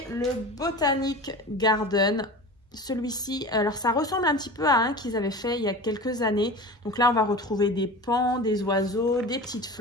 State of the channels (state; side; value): normal; both; correlation 0.33